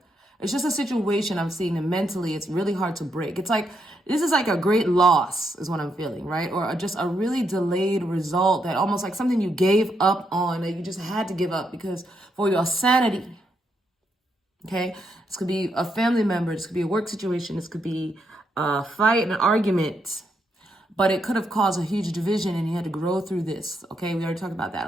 it's just a situation I'm seeing, and mentally it's really hard to break. It's like, this is like a great loss is what I'm feeling, right? Or just a really delayed result, that almost like something you gave up on, that you just had to give up because for your sanity. Okay, this could be a family member, this could be a work situation, this could be a fight, an argument, but it could have caused a huge division, and you had to grow through this. Okay, we already talked about that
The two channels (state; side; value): normal; both; correlation 0.79